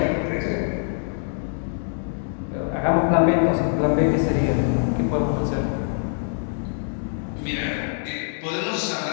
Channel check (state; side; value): silent; right; digital silence